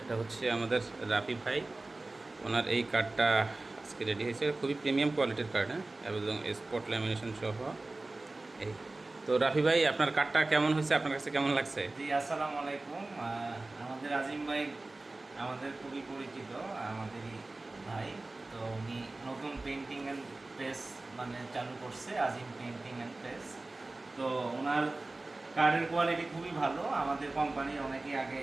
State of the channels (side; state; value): left; quieter; 3.1 dB